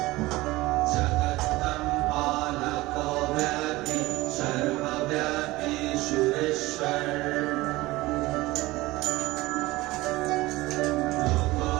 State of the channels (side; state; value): left; quieter; 19.7 dB